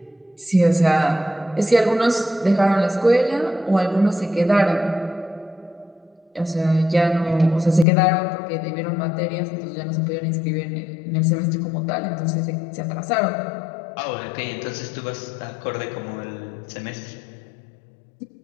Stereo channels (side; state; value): right; drops out; at 7.9 s